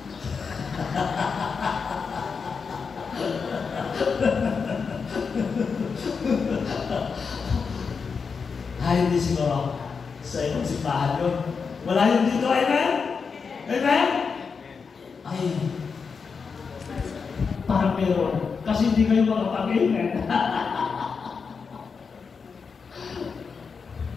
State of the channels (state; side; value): quieter; right; 5.5 dB